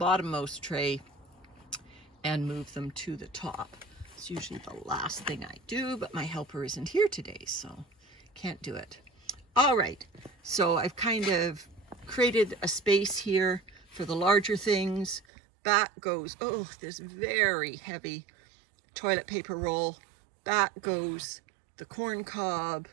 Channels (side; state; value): left; drops out; at 15.2 s